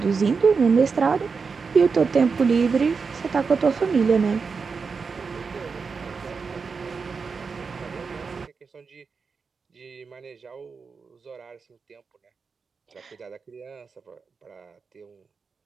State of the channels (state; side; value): quieter; left; 5.1 dB